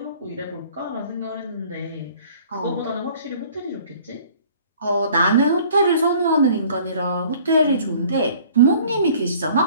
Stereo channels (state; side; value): inverted; both; correlation -0.53